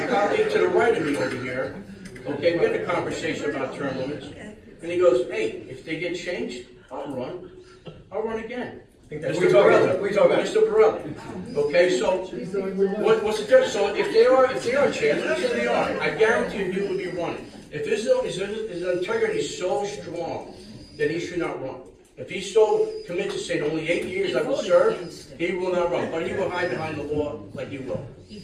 colleague to the right of me over here, okay, we had a conversation about term limits, and he goes, hey, if they get changed, I'll run again. We talk about Mr. Borelli. Okay, so what's the difference? So if they are changed, let's say they are, I guarantee you will be running. If his integrity is so strong, then he should not run. If he's so committed to say only 8 years I will serve, he will not run. But he will hide behind the law like he will.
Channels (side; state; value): both; identical; correlation 1.00